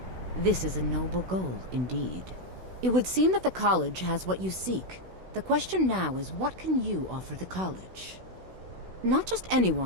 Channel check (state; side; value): late; left; 16 ms